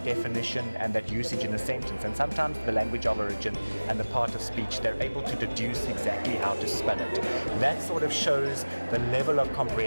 definition and that usage in a sentence, and sometimes the language of origin and the part of speech, they're able to deduce exactly how to spell it. That sort of shows the level of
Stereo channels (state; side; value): inverted; both; correlation -1.00